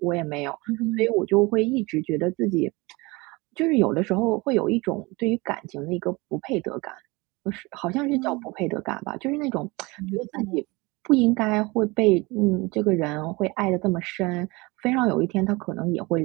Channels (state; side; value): quieter; left; 24.5 dB